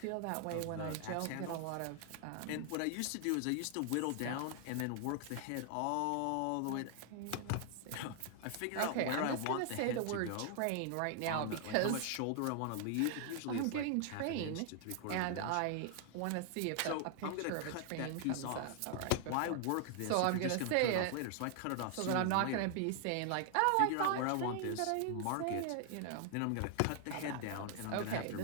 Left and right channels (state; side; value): different; both; correlation 0.00